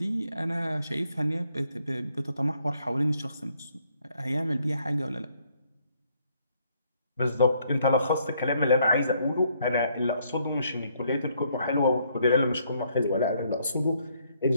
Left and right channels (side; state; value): both; inverted; correlation -0.69